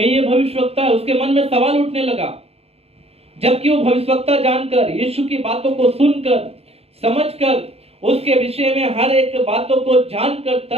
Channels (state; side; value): late; left; 0.29 ms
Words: ये भविष्यवक्ता है? उसके मन में सवाल उठने लगा। जबकि वो भविष्यवक्ता जानकर, यीशु की बातों को सुनकर, समझकर, उसके विषय में हर एक बातों को जानकर